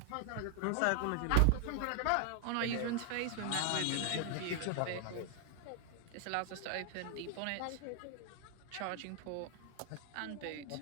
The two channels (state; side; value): different; both; correlation 0.00